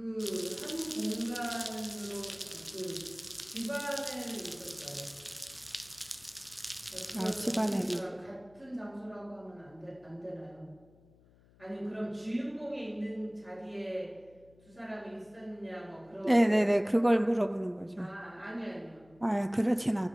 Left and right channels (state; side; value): noise; left; hum, 28 dB below the sound